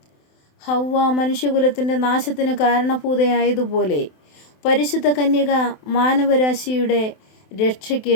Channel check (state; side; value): late; right; 27 ms